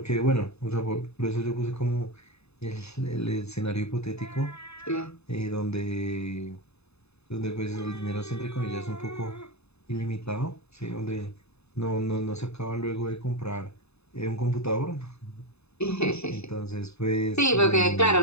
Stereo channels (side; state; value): right; late; 0.80 ms